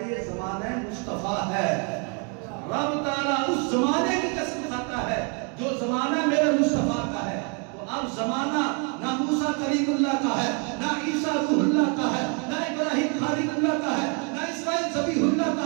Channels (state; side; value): quieter; left; 36.8 dB